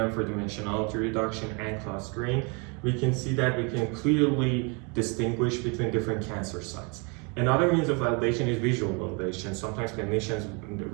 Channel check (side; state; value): left; quieter; 32.7 dB